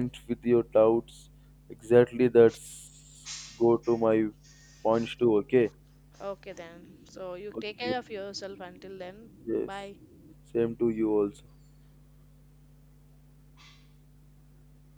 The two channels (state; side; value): identical; both; correlation 1.00